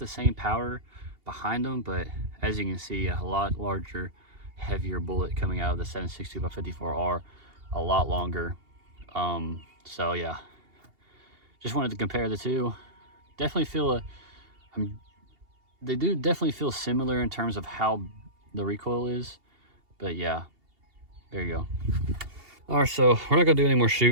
same power behind them, but as you can see, a lot larger, heavier bullet coming out of the 762 by 54R, a lot longer. So yeah, just wanted to compare the two. Definitely feel they do definitely feel similar in terms of how the recoil is, but yeah, there you go. All right, so we're not gonna do any more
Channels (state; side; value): late; left; 2.8 ms